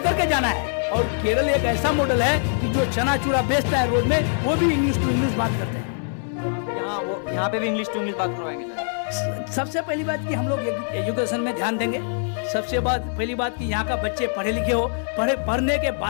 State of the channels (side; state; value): right; silent; 63 dB below the other